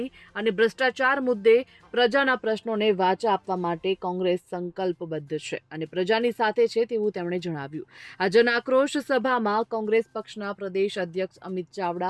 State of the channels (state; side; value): identical; both; correlation 1.00